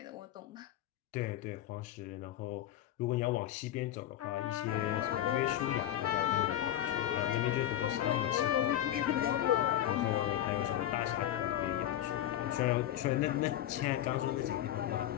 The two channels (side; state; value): right; quieter; 12.4 dB